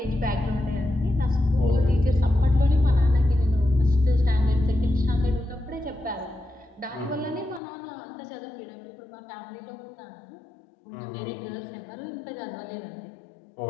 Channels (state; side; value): drops out; right; at 7.6 s